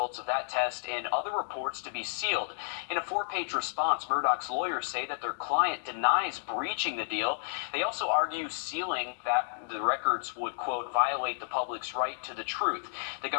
of that test and other reports to be sealed. In a 4-page response, Murdaugh's lawyers say that their client denies breaching the deal. They also argue sealing that the records would, quote, violate the public's right to the truth. The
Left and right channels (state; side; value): silent; right; digital silence